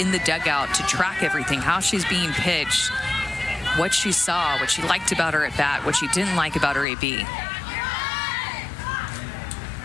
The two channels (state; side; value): drops out; right; at 6.9 s